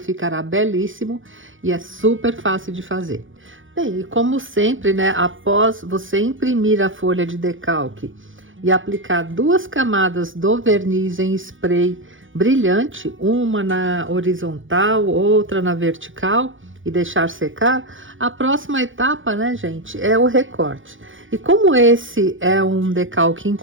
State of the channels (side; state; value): left; late; 0.57 ms